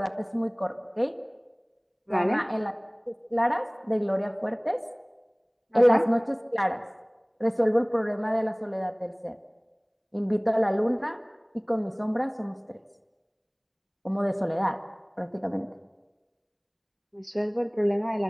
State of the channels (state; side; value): identical; both; correlation 1.00